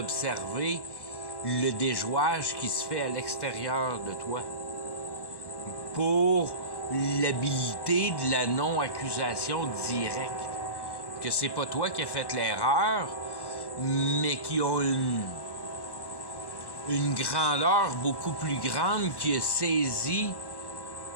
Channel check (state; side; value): late; right; 1.1 ms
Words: le déjouage qui se fait à l'extérieur de toi pour l'habilité de la non-accusation directe. Que c'est pas toi qui as fait l'erreur, mais qui a une grandeur beaucoup plus grande qui a saisi